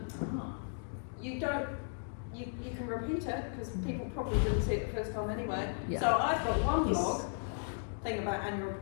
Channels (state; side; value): silent; right; digital silence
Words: You can repeat it because people probably didn't see it the first time anyway. So I've got one blog thing about annual